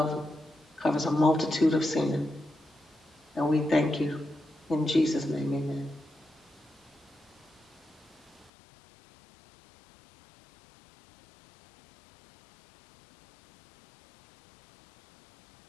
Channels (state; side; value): drops out; right; at 8.5 s